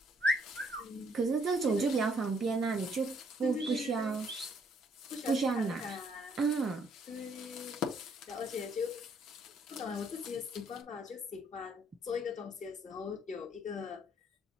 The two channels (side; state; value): both; normal; correlation 0.68